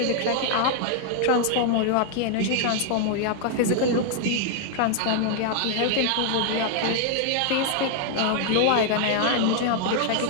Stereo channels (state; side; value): different; both; correlation 0.00